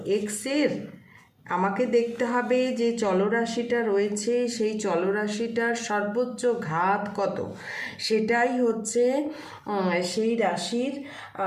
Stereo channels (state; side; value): identical; both; correlation 1.00